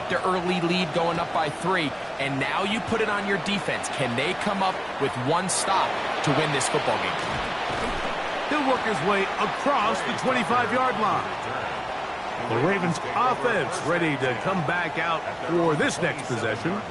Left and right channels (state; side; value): identical; both; correlation 1.00